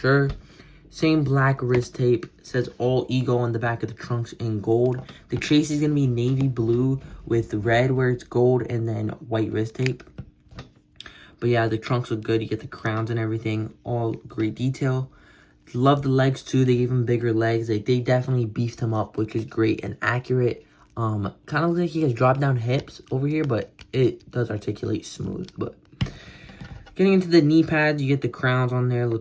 Same black wrist tape. It says all ego on the back of the trunks in gold. The chase is going to be navy blue with red where it's gold and then white wrist tape. But yeah, the trunks look good. You get the crowns and everything. All great detail. Love the legs too. They gave him bigger legs. They definitely beefed him up, which is great and accurate. Kind of looks like he has drop down hips over here, but it does articulate smooth. But getting into the knee pads, you get the crowns on there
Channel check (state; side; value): identical; both; correlation 1.00